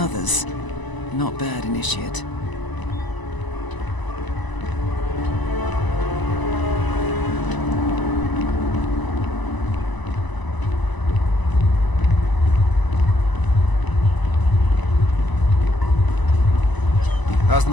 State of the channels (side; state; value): right; late; 1.0 ms